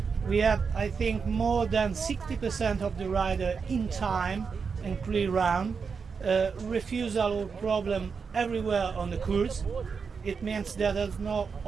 We have, I think, more than 60% of the rider in time and clear round. Refusal or problem everywhere on the course. It means that there's not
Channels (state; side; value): quieter; left; 5.6 dB